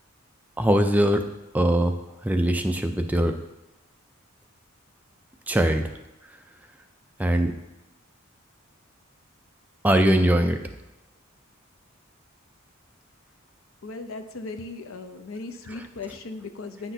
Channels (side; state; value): both; normal; correlation 0.85